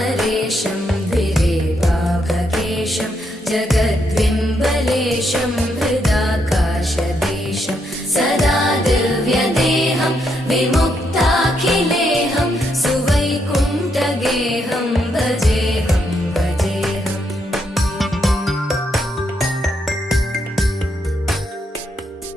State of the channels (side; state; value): both; normal; correlation 0.78